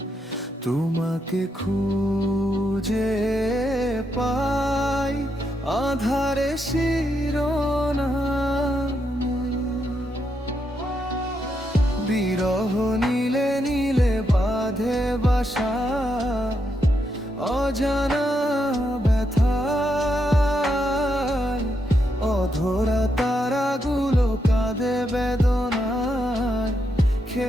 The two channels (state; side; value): normal; both; correlation 0.81